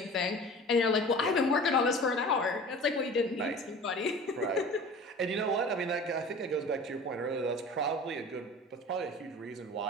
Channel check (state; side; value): normal; both; correlation 0.40